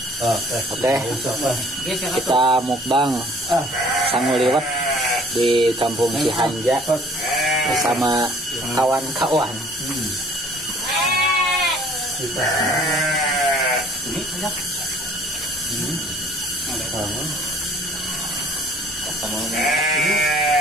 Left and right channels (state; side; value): normal; both; correlation 0.54